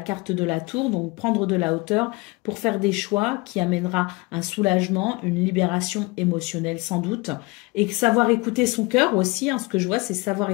de la tour, donc prendre de la hauteur pour faire des choix qui amènera un soulagement, une libération émotionnelle sans doute, et savoir écouter son cœur aussi, hein, ce que je vois c'est savoir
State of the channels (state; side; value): quieter; right; 25.3 dB